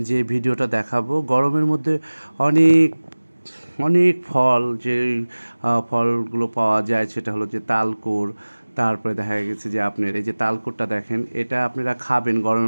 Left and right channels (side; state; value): both; inverted; correlation -1.00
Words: যে ভিডিওটা দেখাবো, গরমের মধ্যে অনেক অনেক ফল যে ফলগুলো পাওয়া যায় সেটা হলো যে তালকুর। তারপরে দেখা গেছে যে আপনার এই যে তালকুরটা দেখেন, এটা আপনারা খাবেন